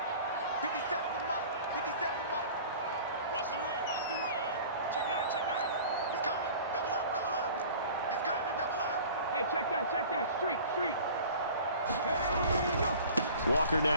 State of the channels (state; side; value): inverted; both; correlation -0.43